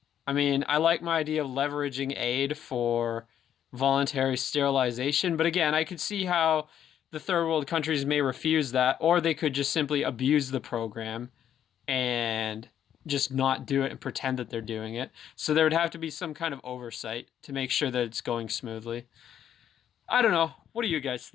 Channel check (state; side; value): quieter; right; 9.9 dB